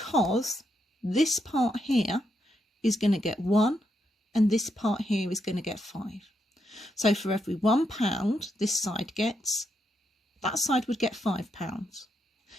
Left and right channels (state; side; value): normal; both; correlation 0.80